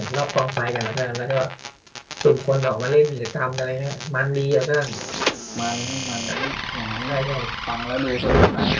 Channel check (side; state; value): both; identical; correlation 1.00